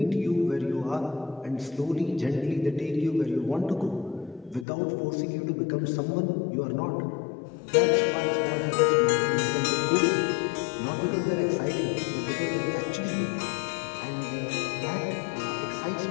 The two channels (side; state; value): right; drops out; at 4.7 s